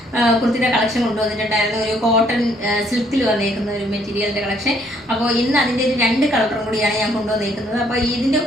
കുർത്തിയുടെ കളക്ഷൻ കൊണ്ടുവന്നിട്ടുണ്ടായിരുന്നു. ഒരു കോട്ടൺ സിൽക്കിൽ വന്നേക്കുന്ന ഒരു മെറ്റീരിയലിൻ്റെ കളക്ഷൻ. അപ്പോൾ ഇന്ന് അതിൻ്റെ ഒരു 2 കളറും കൂടിയാണ് ഞാൻ കൊണ്ടുവന്നേക്കുന്നത്. അപ്പോൾ ഇതിൻ്റെ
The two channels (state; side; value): normal; both; correlation 0.66